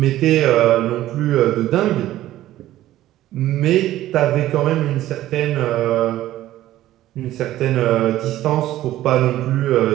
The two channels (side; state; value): left; quieter; 14.3 dB